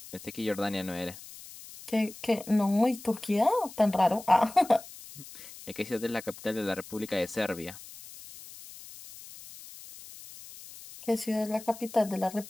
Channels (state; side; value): noise; left; hiss, 16 dB below the sound